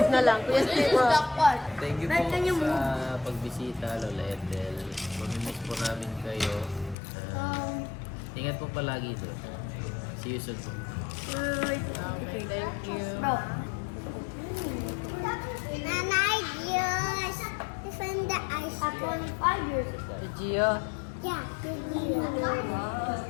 na lang. Kuya Steve, oh. Jackpot. Thank you Ba't po can you sa pagbisita, Lola Ethel. Mamimiss po namin kayo. Ingat po palagi doon. See you soon po. Okay, thank you. Bro. Nanay, yes. Defend the ice. Upon 5 years ago. Si Gio. Yeah, good deal.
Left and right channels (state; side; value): drops out; right; at 7.0 s